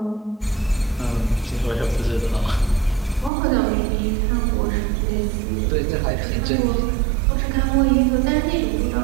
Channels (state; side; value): drops out; left; at 3.3 s